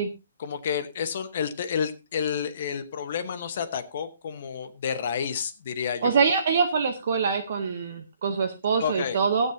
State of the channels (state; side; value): inverted; both; correlation -0.62